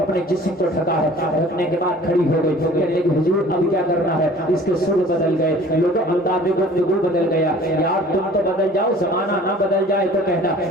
جسم کو ڈھکا ہے. ڈھکنے کے بعد کھڑی ہو گئی. لیکن حضور اب کیا کرنا ہے. اس کے سر بدل گئے, لوگوں انداز گفتگو بدل گیا. یار تم تو بدل جاؤ, زمانہ نہ بدل جائے تو کہنا.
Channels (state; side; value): normal; both; correlation 0.48